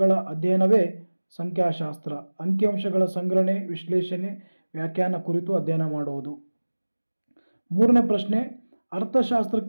ಅಧ್ಯಯನವೇ ಸಂಖ್ಯಾಶಾಸ್ತ್ರ. ಅಂಕಿಅಂಶಗಳ ಸಂಗ್ರಹಣೆ, ವಿಶ್ಲೇಷಣೆ, ವ್ಯಾಖ್ಯಾನ ಕುರಿತು ಅಧ್ಯಯನ ಮಾಡುವುದು. 3ನೇ ಪ್ರಶ್ನೆ,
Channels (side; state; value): both; inverted; correlation -1.00